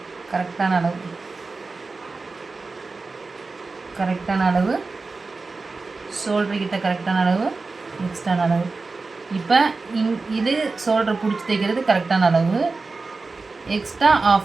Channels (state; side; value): quieter; left; 3.9 dB